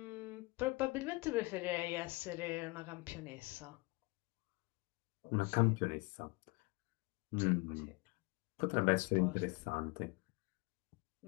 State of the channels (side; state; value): right; quieter; 25.7 dB